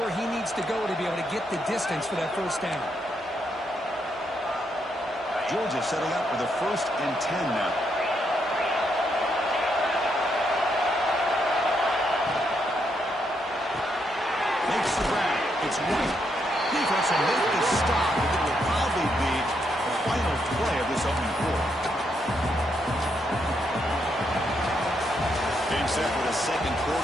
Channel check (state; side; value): normal; both; correlation 0.78